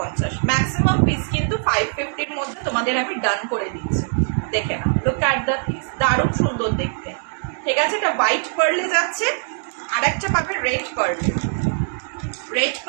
ম্যাক্সিমাম পিস কিন্তু 550-র মধ্যে তোমাদের আমি ডান করে দিচ্ছি। দেখে নাও, লুক অ্যাট দ্য পিস, দারুণ সুন্দর দেখতে। ঠিক আছে, এটা হোয়াইট পার্লে যাচ্ছে, আর একটা পাবে রেড পার্লে। রেড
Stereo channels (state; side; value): silent; left; digital silence